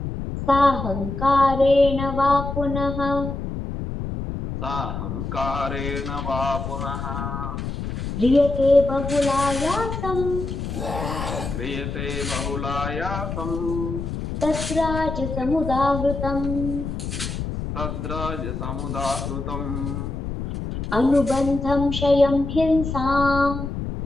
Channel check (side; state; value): left; noise; rumble, 5 dB below the sound